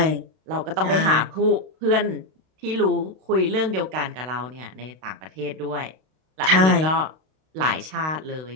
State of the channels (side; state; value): left; late; 32 ms